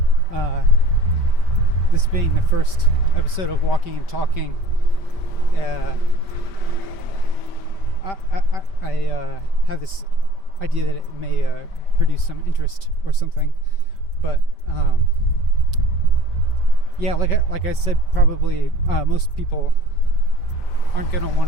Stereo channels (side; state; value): right; late; 5.1 ms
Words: this being the first episode of Walking and Talking. I have this idea that it may produce some interest or something, but yeah, like I said, probably most people aren't gonna